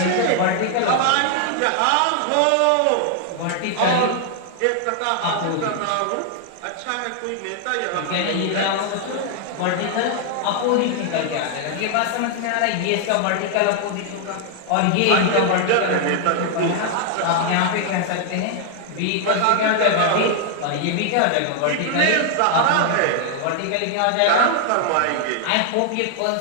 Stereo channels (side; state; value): both; different; correlation 0.00